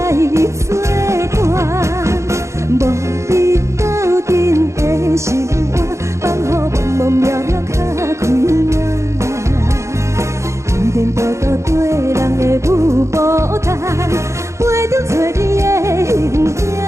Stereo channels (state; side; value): late; left; 0.14 ms